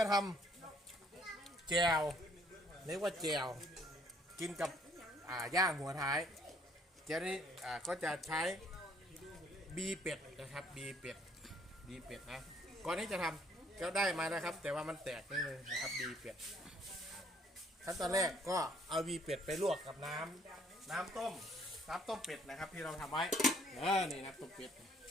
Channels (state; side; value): normal; both; correlation 0.63